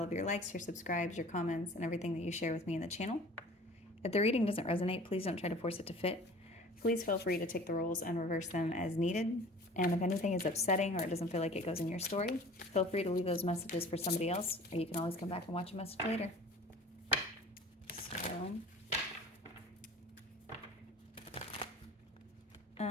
of your likes, your subscribes, your comments, and everything that you share with me in the channel. If the reading doesn't resonate, please don't try to force it to fit. Please feel free to take the roles and reverse them as needed. And if anything is upsetting or it doesn't feel like it goes in your story, feel free to leave those messages for somebody else, or you can always come back and watch a message later. So...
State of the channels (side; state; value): both; normal; correlation 0.45